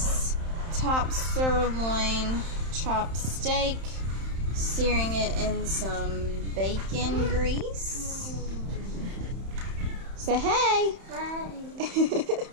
top sirloin chopped steak, searing it in some bacon grease. Say hey. Hi.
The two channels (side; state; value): left; late; 31 ms